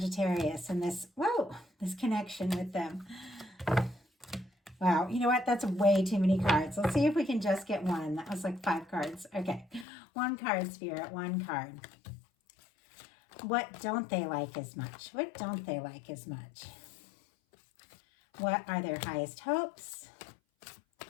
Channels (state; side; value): drops out; right; at 9.9 s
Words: and this connection with them? Wow, you know what? That's way too many cards. Let's see if we can just get one. That was like 5 cards. Okay, one card, Spirit, one card. What don't they like as much? What don't they like as much? What are their highest hopes?